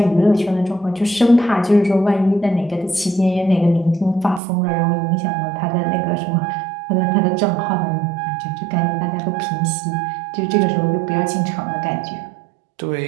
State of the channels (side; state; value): left; drops out; at 4.4 s